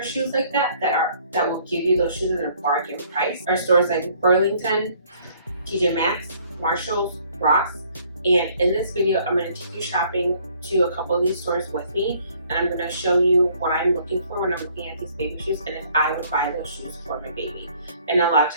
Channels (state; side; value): inverted; both; correlation -0.61